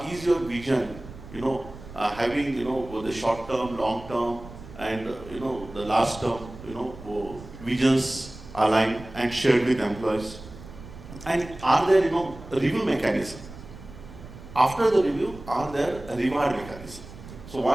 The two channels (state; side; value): noise; right; rumble, 16 dB below the sound